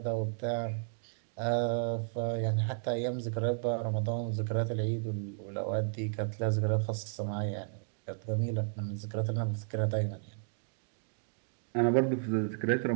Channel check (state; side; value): silent; left; digital silence